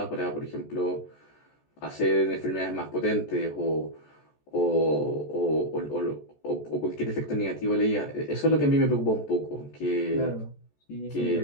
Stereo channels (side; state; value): right; late; 14 ms